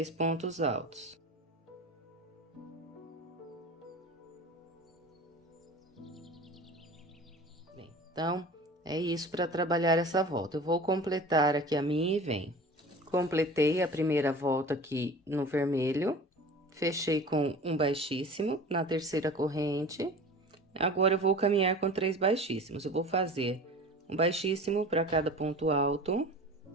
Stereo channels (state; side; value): normal; both; correlation 0.38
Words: pontos altos. Então, é isso para trabalhar essa volta. Eu vou completar aqui a minha e venho. Completei a primeira volta aqui no vermelho, fechei com um baixíssimo na terceira corrente. Agora, eu vou caminhar com 3 baixíssimos. Eu vou fazer um baixíssimo para cada ponto alto.